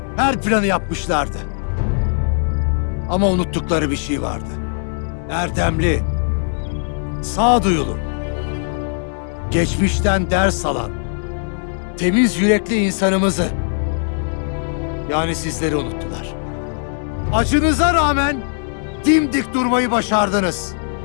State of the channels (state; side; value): silent; right; 66 dB below the other